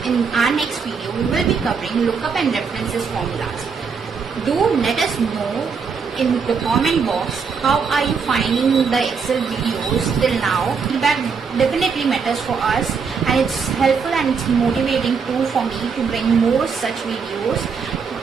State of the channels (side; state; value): left; quieter; 5.7 dB